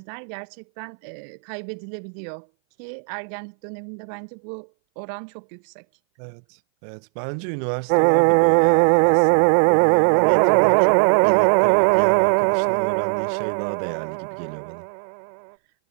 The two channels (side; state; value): left; silent; 60 dB below the other